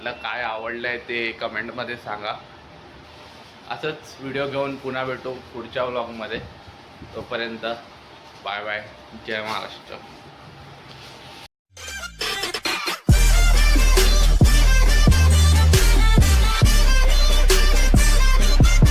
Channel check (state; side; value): identical; both; correlation 1.00